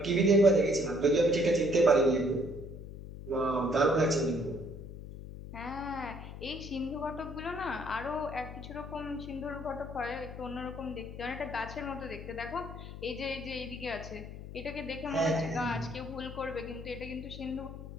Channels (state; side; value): noise; left; hum, 11 dB below the sound